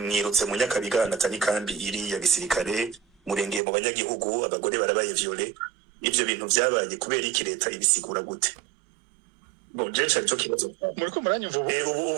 mu Nyakabiga natani kambi iri ya gisirikare, murengeye mu banyagihugu, abagore barabaye violé. Ivyo bintu vyabaye kubera iki leta ibisigura gute? Bon, je cyari cyo kibazo. Muriko muranyumva ubu?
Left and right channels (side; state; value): left; drops out; at 3.6 s